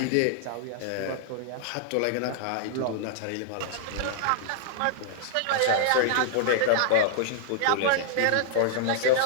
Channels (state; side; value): different; both; correlation -0.01